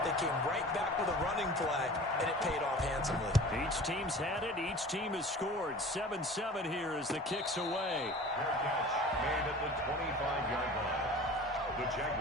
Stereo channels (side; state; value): both; normal; correlation 0.41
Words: They came right back with a running play, and it paid off handsomely. Each team's had it. Each team has scored. 7-7 here as the kick's away. Fair catch made at the 25-yard line. The